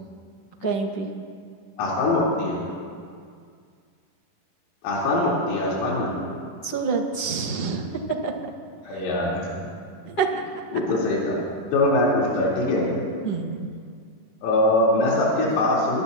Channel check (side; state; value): right; late; 10 ms